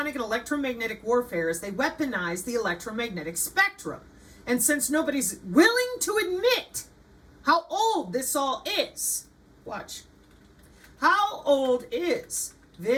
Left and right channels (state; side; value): identical; both; correlation 1.00